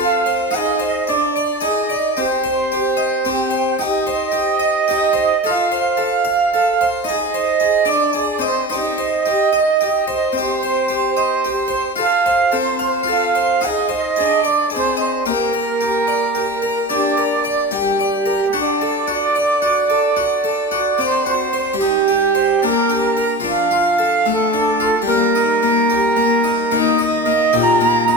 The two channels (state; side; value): normal; both; correlation 0.33